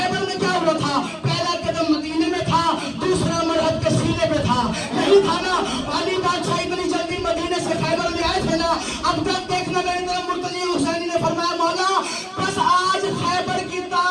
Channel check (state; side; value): identical; both; correlation 1.00